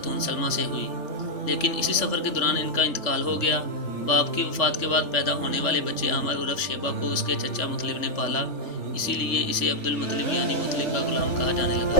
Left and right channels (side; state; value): right; late; 3.4 ms